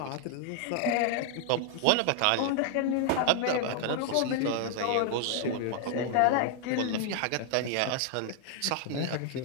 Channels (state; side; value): different; both; correlation 0.00